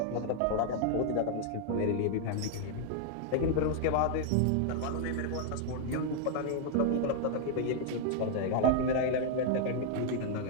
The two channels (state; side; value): different; both; correlation 0.00